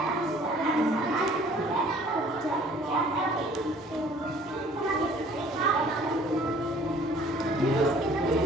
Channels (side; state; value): both; normal; correlation 0.54